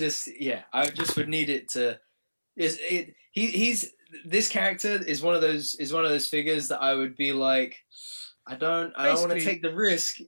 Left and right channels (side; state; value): both; inverted; correlation -1.00